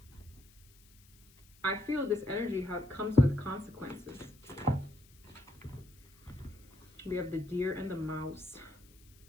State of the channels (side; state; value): left; noise; hiss, 27 dB below the sound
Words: I feel this energy comes with consequences. We have the deer and the mouse.